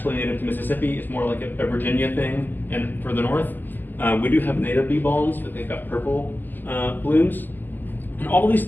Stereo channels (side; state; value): right; late; 0.088 ms